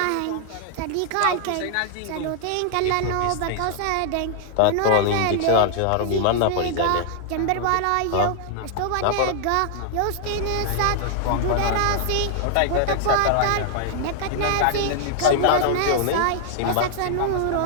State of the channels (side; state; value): both; different; correlation -0.01